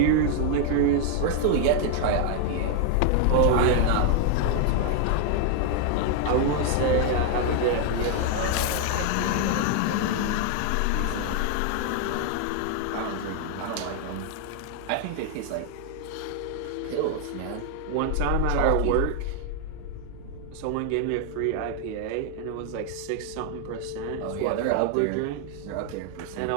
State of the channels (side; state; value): both; different; correlation 0.00